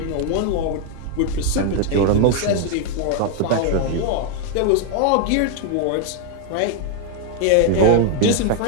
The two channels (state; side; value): different; both; correlation 0.01